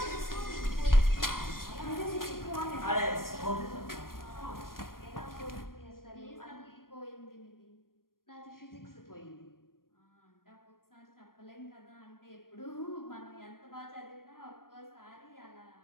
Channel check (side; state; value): right; late; 0.91 ms